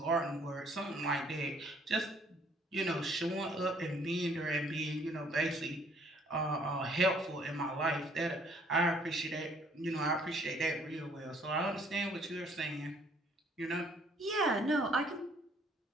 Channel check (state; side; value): normal; both; correlation 0.61